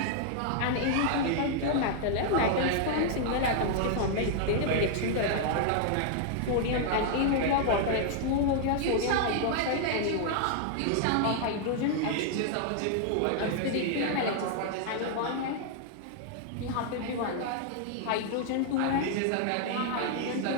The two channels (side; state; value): both; different; correlation -0.01